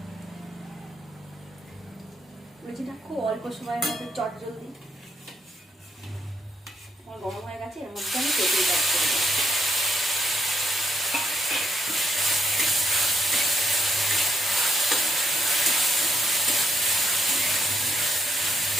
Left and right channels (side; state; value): both; normal; correlation 0.75